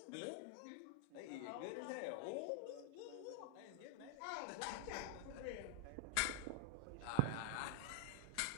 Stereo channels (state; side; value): different; both; correlation 0.00